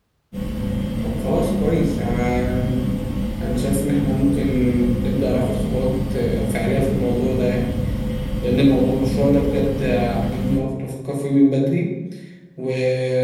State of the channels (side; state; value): both; identical; correlation 1.00